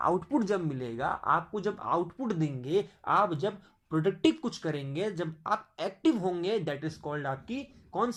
जब मिलेगा, आपको जब आउटपुट देंगे, आप जब प्रोडक्टिव कुछ करेंगे, जब आप एक्टिव होंगे, दैट इज कॉल्ड आपकी कौन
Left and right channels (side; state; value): both; identical; correlation 1.00